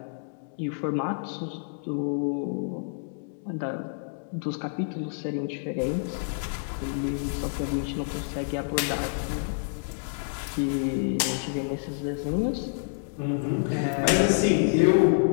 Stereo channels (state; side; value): silent; right; digital silence